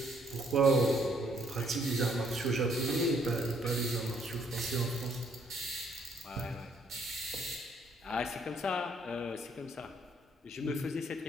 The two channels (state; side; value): normal; both; correlation 0.67